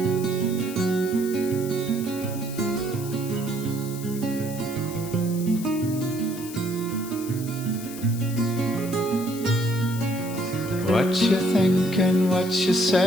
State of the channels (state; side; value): noise; left; hiss, 13 dB below the sound